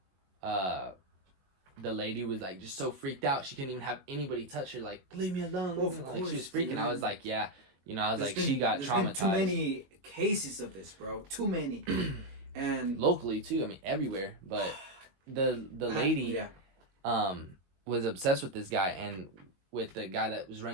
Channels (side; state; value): left; late; 21 ms